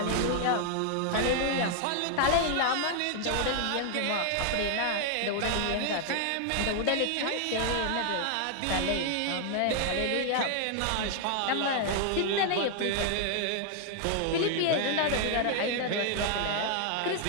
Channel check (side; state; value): both; different; correlation 0.00